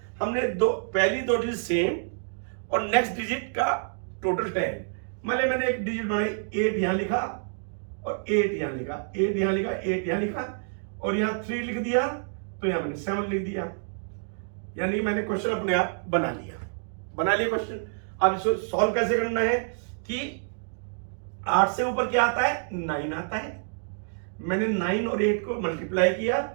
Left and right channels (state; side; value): silent; left; digital silence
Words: हमने पहली दो डिजिट सेम और नेक्स्ट डिजिट का टोटल 10। मैंने एक डिजिट बनाई, 8 यहां लिखा और 8 यहां लिखा, 8 यहां लिखा, 8 यहां लिखा और यहां 3 लिख दिया, तो यहां मैंने 7 लिख दिया। यानी मैंने क्वेश्चन अपने आप बना लिया क्वेश्चन। अब इसको सॉल्व कैसे करना है कि 8 से ऊपर क्या आता है? 9 आता है। मैंने 9 और 8 को मल्टीप्लाई किया,